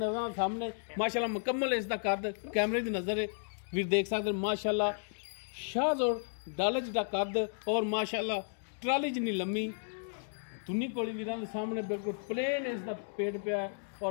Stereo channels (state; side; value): silent; right; digital silence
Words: सामने माशाअल्लाह मुकम्मल इसका कद कैमरे की नज़र है वीर देख सकते माशाअल्लाह शाज और डाले जिहा कद और माशाअल्लाह ट्राली जिनी लम्मी तुन्नी कोली वीरां दे सामने बिल्कुल प्लेन इसका पेट पिया है